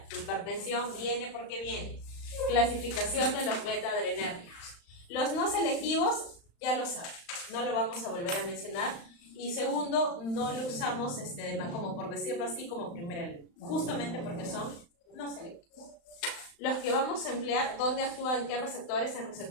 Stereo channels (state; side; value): late; right; 35 ms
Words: Su hipertensión viene porque viene. Clasificación de los beta adrenérgicos. Los no selectivos, ya lo saben, no lo vamos a volver a mencionar. Y segundo, no lo usamos como por decirlo así como primera línea, justamente porque son no selectivos. Los que vamos a emplear, ¿dónde actúan? ¿En qué receptores? En